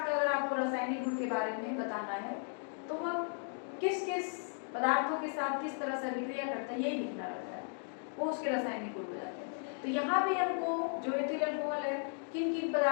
का अगर आपको रासायनिक गुण के बारे में बताना है तो वह किस किस पदार्थों के साथ किस तरह से अभिक्रिया करता है यही लिखना रहता है, वो उसके रासायनिक गुण हो जाते हैं। तो यहाँ भी हमको जो एथिल अल्कोहल है किन किन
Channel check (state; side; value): silent; right; 54 dB below the other